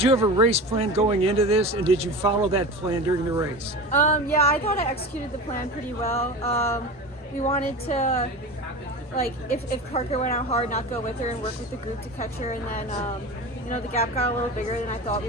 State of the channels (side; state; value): both; normal; correlation 0.30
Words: have a race plan going into this, and did you follow that plan during the race? Yeah, I thought I executed the plan pretty well. We wanted to, like, if Parker went out hard, not go with her and work with the group to catch her, and then the gap got a little bigger than I thought